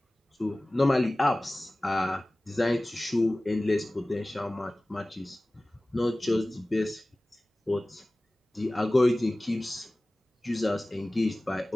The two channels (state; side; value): normal; both; correlation 0.98